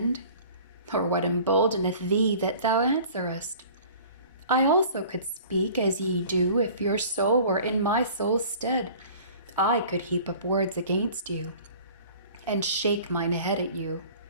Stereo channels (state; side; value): inverted; both; correlation -0.47